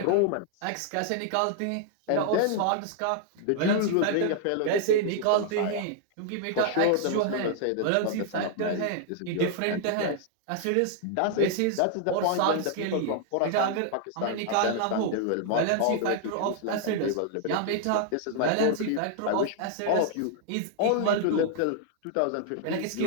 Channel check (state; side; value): different; both; correlation -0.01